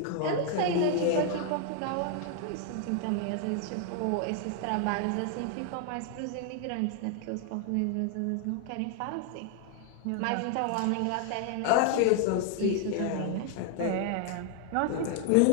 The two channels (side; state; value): both; different; correlation 0.00